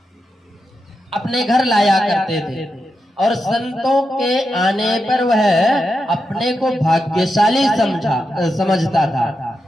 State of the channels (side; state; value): both; normal; correlation 0.87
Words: अपने घर लाया करते थे, और संतों के आने पर वह अपने को भाग्यशाली समझता था